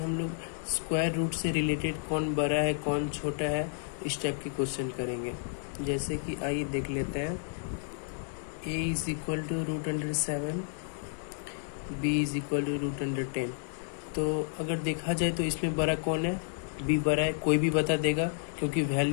लोग स्क्वायर रूट से रिलेटेड कौन बड़ा है कौन छोटा है इस टाइप के क्वेश्चन करेंगे। जैसे कि आइए देख लेते हैं। a is equal to √7, b is equal to √10। तो अगर देखा जाए तो इसमें बड़ा कौन है, b बड़ा है। कोई भी बता देगा, क्योंकि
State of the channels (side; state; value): right; silent; digital silence